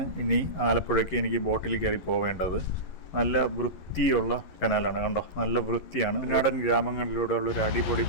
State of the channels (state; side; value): late; right; 11 ms